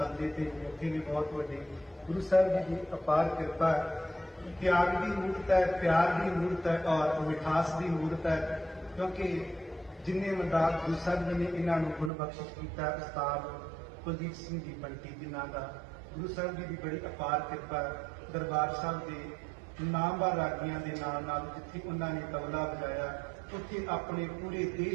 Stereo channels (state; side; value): drops out; left; at 12.1 s